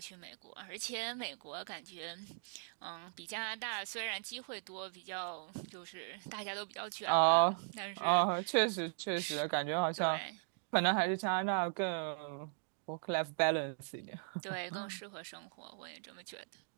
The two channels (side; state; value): left; silent; digital silence